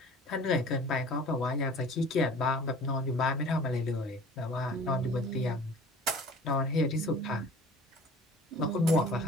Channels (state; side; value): normal; both; correlation 0.45